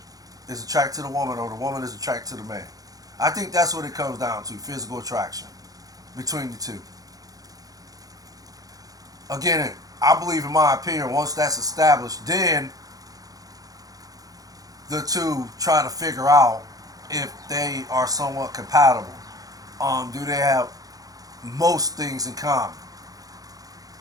is attracted to the woman or the woman is attracted to the man. I think that's what it comes down to: physical attraction between the two. Again, I believe, in my opinion, once that's established, then the two try to figure out if they are somewhat compatible. Do they have most things in common?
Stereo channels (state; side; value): late; left; 0.18 ms